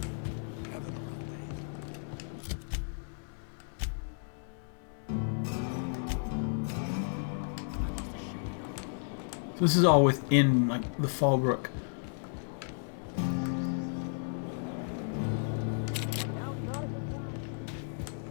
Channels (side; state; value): right; silent; digital silence